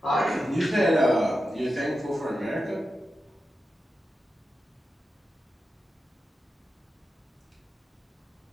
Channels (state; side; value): normal; both; correlation 0.90